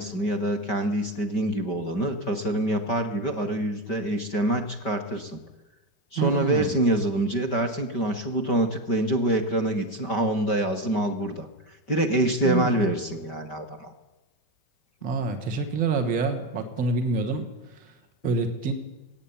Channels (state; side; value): late; right; 5.1 ms